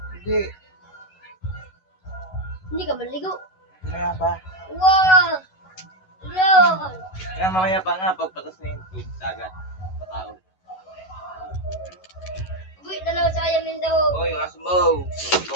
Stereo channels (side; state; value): right; late; 11 ms